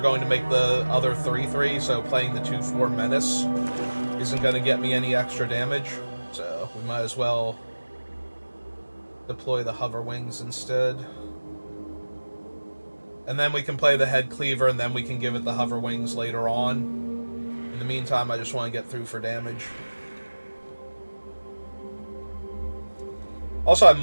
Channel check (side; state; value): both; inverted; correlation -1.00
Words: going to make the other 3/3, so playing the 2/4 Menace isn't going to get me any extra damage. So we might as well deploy the Hover Wings instead. And then we can play the Head Cleaver, and then we can give it the Hover Wings later on. In the meantime, I just want to get through for damage. Also, I